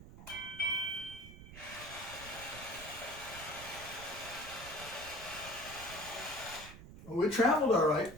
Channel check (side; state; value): right; noise; rumble, 15 dB below the sound